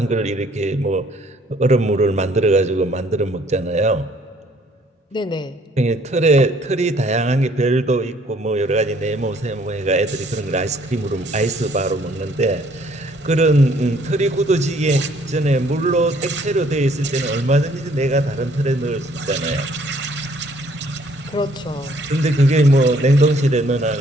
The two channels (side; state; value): both; normal; correlation 0.62